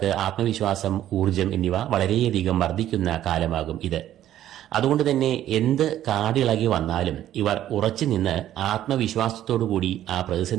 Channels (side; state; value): left; quieter; 12.2 dB